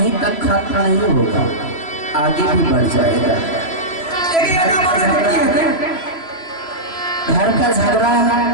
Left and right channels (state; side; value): late; right; 3.0 ms